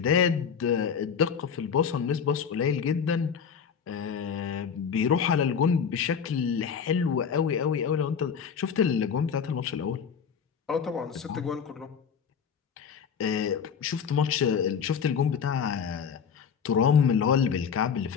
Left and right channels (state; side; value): quieter; right; 6.9 dB